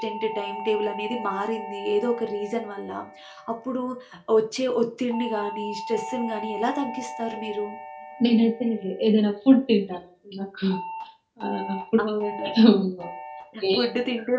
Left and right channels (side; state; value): both; identical; correlation 1.00